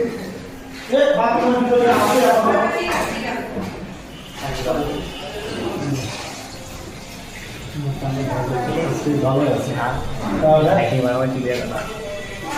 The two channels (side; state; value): both; identical; correlation 1.00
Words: বাথরুমের ভিতরে আছে ভালো আছে। তাহলে একেবারে আমার ক্লিয়ার না